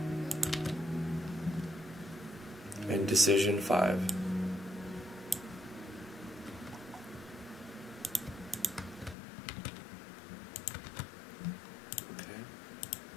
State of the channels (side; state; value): right; drops out; at 9.2 s